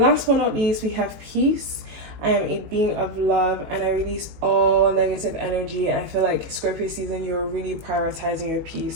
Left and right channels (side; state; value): left; late; 18 ms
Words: but not least, we have peace. I am a being of love, and I release all negative energy. I feel like Scorpio season, you're really prioritizing your